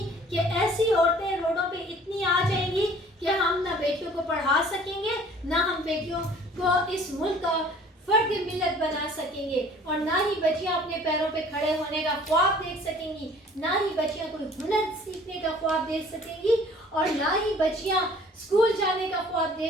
ایسی عورتیں روڈوں پہ اتنی آ جائیں گی کہ ہم نہ بیٹیوں کو پڑھا سکیں گے، نہ ہم بیٹیوں کو اس ملک کا فرد ملت بنا سکیں گے، اور نہ ہی بچیاں اپنے پیروں پہ کھڑے ہونے کا خواب دیکھ سکیں گی، نہ ہی بچیاں کوئی ہنر سیکھنے کا خواب دیکھ سکیں گی، اور نہ ہی بچیاں اسکول جانے کا خواب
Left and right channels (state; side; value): normal; both; correlation 0.52